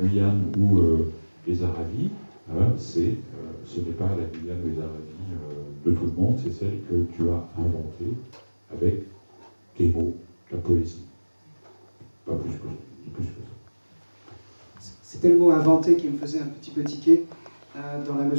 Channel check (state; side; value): inverted; both; correlation -1.00